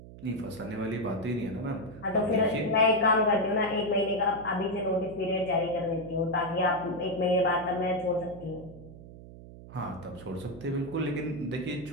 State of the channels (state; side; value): noise; right; hum, 16 dB below the sound